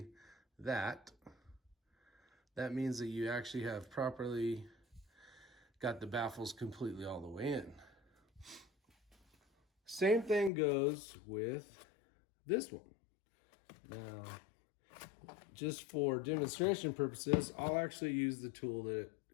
that means that you actually have properly got the baffles completely all the way in. Same thing goes with this one. Now, just for demonstration purposes, I'll actually use the tool that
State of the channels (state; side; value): drops out; right; at 10.5 s